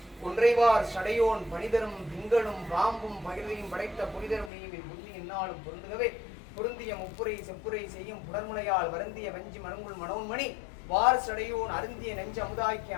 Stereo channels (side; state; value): right; drops out; at 4.5 s